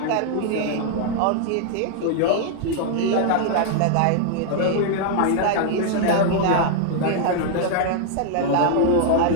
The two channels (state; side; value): different; both; correlation 0.00